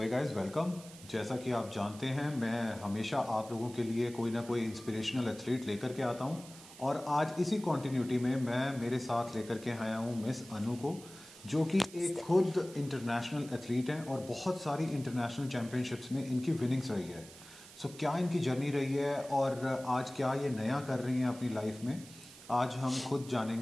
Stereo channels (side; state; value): right; noise; hiss, 18 dB below the sound